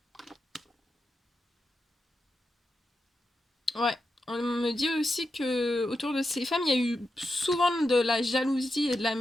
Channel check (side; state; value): both; normal; correlation 0.88